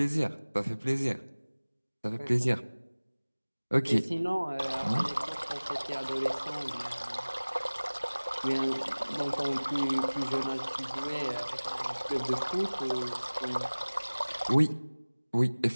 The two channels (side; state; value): both; inverted; correlation -1.00